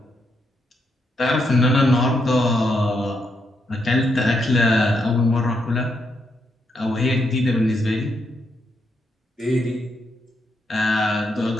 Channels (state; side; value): normal; both; correlation 0.79